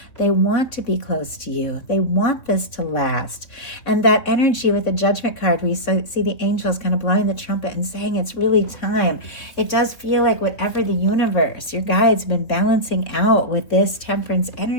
They want to be close to you. They want this to last. And that energy with the Judgment card, we see the angels kind of blowing the trumpet and saying it's really time. It does feel like whatever the universe, your guides, been balancing out with this Temperance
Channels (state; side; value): late; right; 3.4 ms